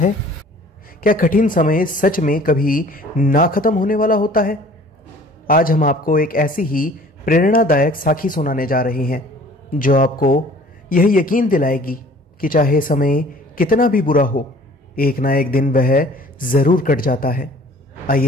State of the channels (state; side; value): normal; both; correlation 0.51